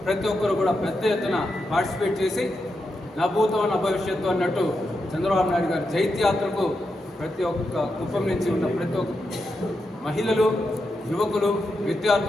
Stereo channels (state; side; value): normal; both; correlation 0.86